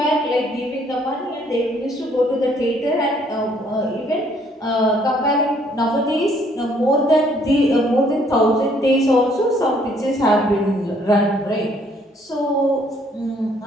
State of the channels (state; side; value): normal; both; correlation 0.64